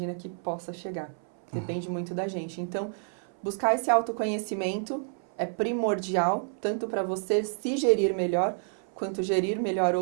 que possa chegar. Depende muito da gente. Então, buscar esse autoconhecimento é primordial, tanto para você se gerir melhor, quanto gerir melhor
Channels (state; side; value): silent; left; 59 dB below the other